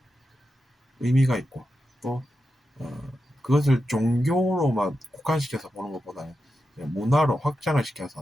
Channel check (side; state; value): both; normal; correlation 0.89